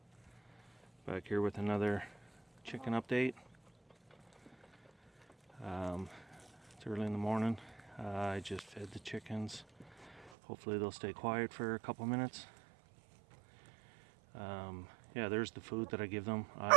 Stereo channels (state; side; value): drops out; left; at 10.3 s